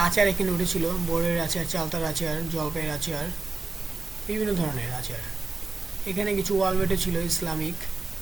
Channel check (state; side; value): quieter; left; 3.8 dB